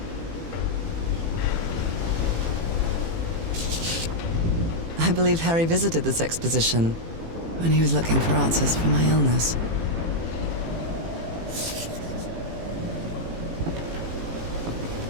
I believe Harry visited this exposition when he was looking for answers for my illness.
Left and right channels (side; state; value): left; late; 18 ms